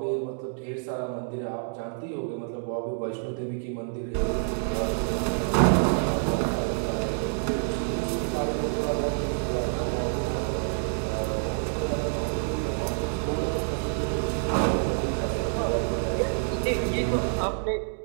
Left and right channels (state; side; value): silent; left; digital silence